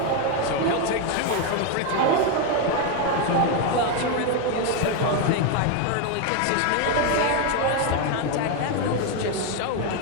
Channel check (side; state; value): both; different; correlation 0.02